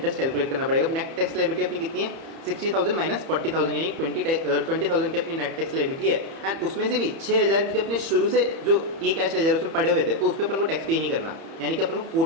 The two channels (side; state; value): left; late; 31 ms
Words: कैलकुलेट करना पड़ेगा। नेट टैक्स लायबिलिटी अपनी कितनी है, 60,000 माइनस 40,000 यानी 20,000 की अपनी नेट टैक्स लायबिलिटी है। एंड उसमें से भी 6,000 क्योंकि अपने शुरू से जो ई कैश लेजर उसमें पड़े हुए थे तो उस पर अपन को टैक्स पे नहीं करना, यानी कि अपन को